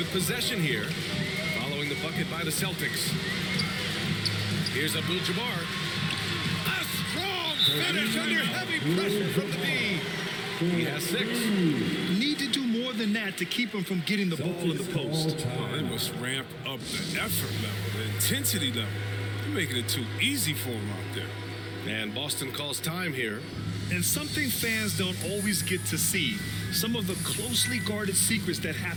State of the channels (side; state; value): both; identical; correlation 1.00